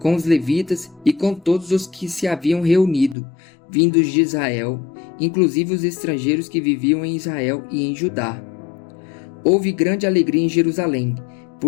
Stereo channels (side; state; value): right; drops out; at 3.2 s